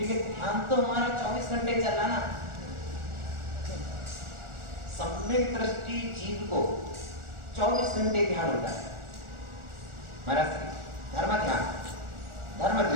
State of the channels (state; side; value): late; left; 1.4 ms